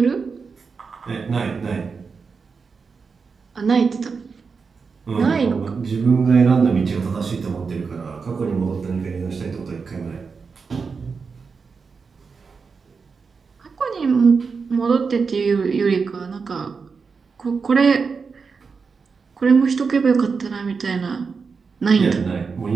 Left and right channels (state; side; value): quieter; left; 5.2 dB